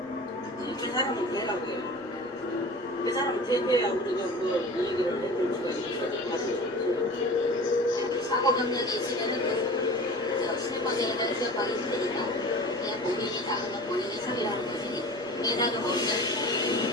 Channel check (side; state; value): right; noise; rumble, 28 dB below the sound